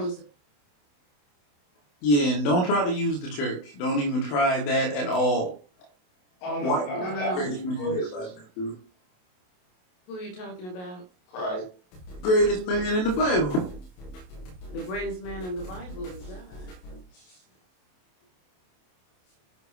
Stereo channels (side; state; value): right; late; 27 ms